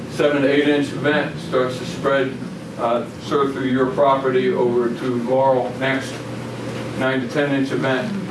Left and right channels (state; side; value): identical; both; correlation 1.00